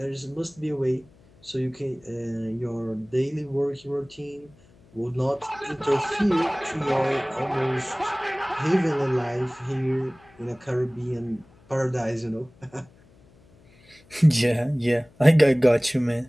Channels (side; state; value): left; noise; hum, 28 dB below the sound